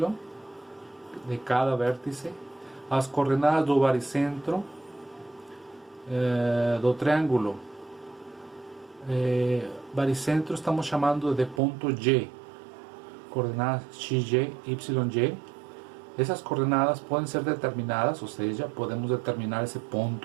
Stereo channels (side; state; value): left; drops out; at 11.6 s